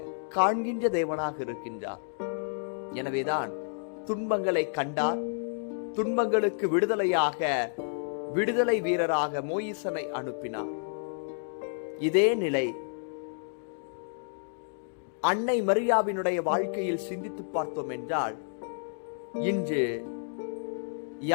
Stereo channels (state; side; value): silent; right; digital silence